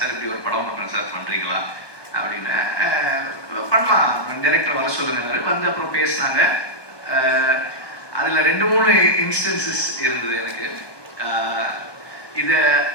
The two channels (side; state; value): right; late; 1.2 ms